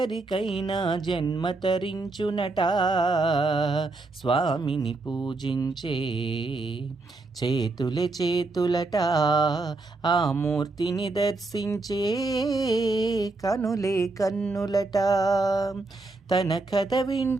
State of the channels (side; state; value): left; quieter; 3.4 dB